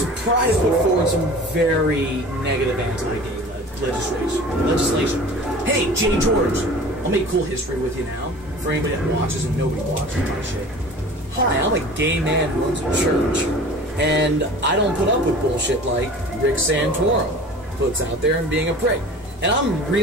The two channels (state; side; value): normal; both; correlation 0.41